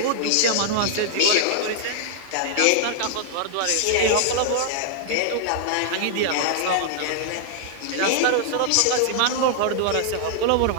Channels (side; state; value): both; different; correlation 0.00